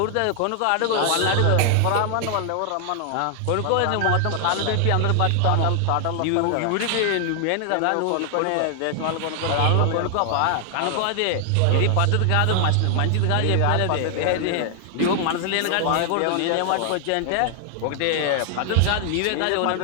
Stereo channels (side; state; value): both; different; correlation 0.00